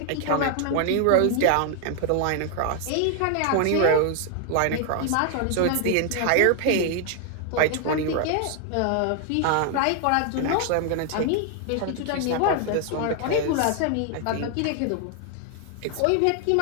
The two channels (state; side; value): different; both; correlation 0.00